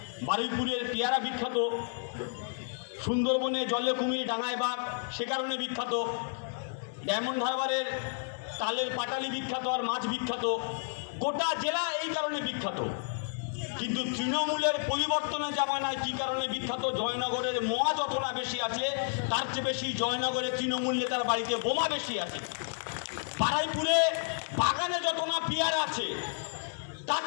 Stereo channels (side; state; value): right; silent; 57 dB below the other